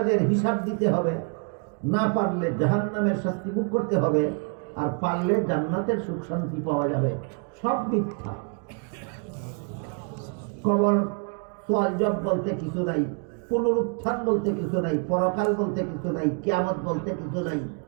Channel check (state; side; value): quieter; left; 39.2 dB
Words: হিসাব দিতে হবে। না পারলে জাহান্নামের শাস্তি ভোগ করতে হবে, আর পারলে জান্নাতের সুখ শান্তি পাওয়া যাবে। সব মিথ্যা। কবর সওয়াল জব বলতে কিছু নাই, পুনরুত্থান বলতে কিছু নাই, পরকাল বলতে কিছু নাই, কিয়ামত বলতে কিছু নাই,